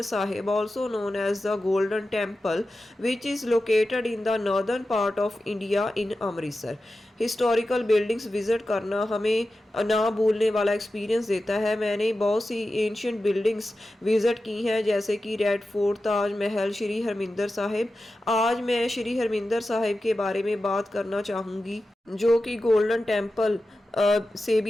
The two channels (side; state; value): both; normal; correlation 0.93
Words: Sahib, also known as the Golden Temple, which is located in the northern part of India in Amritsar. Historical buildings visit करना हमें ना भूलने वाला experience देता है। मैंने बहुत सी ancient buildings visit की हैं जैसे कि रेड फोर्ट, ताज महल, श्री हरमिंदर साहिब। आज मैं श्री हरमिंदर साहिब के बारे में बात करना चाहूँगी जो कि गोल्डन टेम्पल से